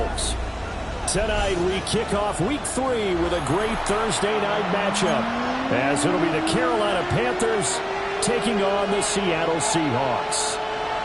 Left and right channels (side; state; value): both; identical; correlation 1.00